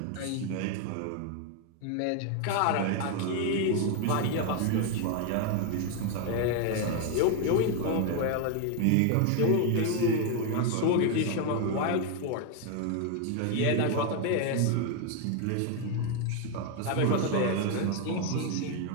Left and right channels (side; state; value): both; different; correlation 0.01